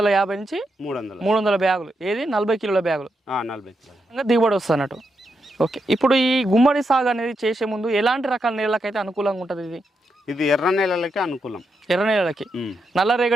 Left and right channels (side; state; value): both; normal; correlation 0.83